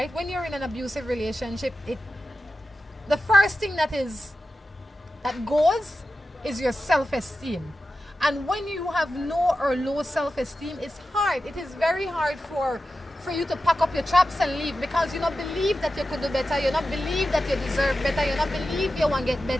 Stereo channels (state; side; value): normal; both; correlation 0.92